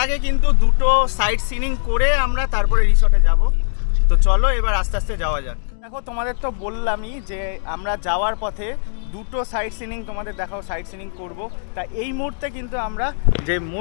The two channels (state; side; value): silent; right; digital silence